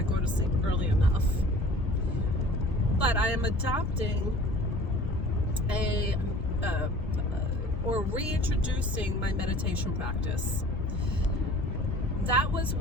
go to sleep early enough. But I am adopting or reintroducing my meditation practice. That was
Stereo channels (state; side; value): normal; both; correlation 0.46